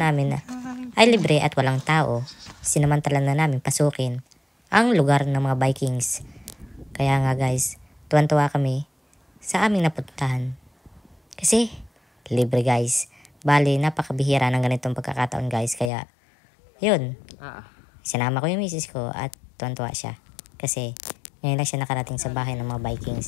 ay libre at walang tao, sinamantala na namin pasukin ang lugar ng mga Vikings. Kaya nga guys, tuwan-tuwa kami sa aming napuntahan. Kasi libre guys. Bali, napakabihira ng ganitong pagkakataon guys. Kaya, yun. Sinama ko yung misis ko at tuwan-tuwa siya. Kasi, ngayon lang siya nakarating sa bahay ng mga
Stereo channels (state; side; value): drops out; right; at 15.9 s